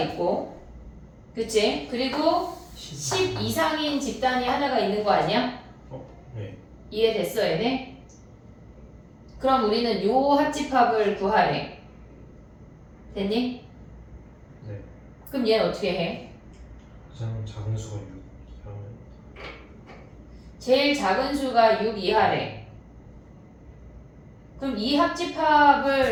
그치? 그리고 10 이상인 집단이 하나가 있는 거 아니야? 네. 이해됐어, 얘네? 그럼 우리는 요 합집합을 구하래. 됐니? 네. 그럼 얘는 어떻게 해? 가장 작은 수가 6 이하면 제일 작은 수가 6 이하래. 그럼 이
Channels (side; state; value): both; identical; correlation 1.00